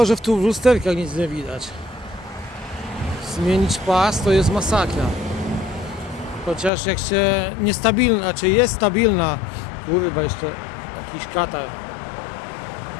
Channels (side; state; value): right; drops out; at 6.7 s